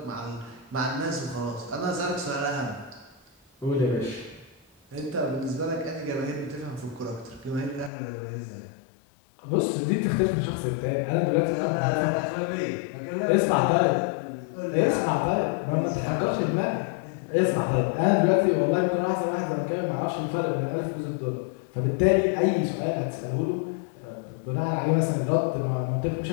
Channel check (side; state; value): right; drops out; at 7.9 s